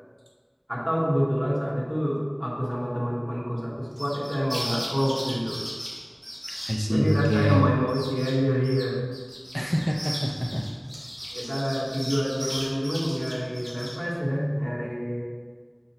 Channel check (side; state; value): both; identical; correlation 1.00